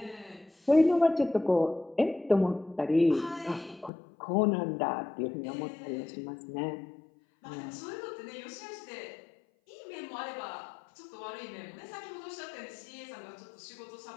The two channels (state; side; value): drops out; right; at 3.9 s